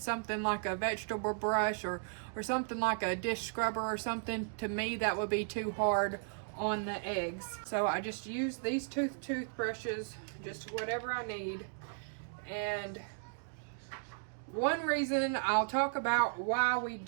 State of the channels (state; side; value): silent; left; digital silence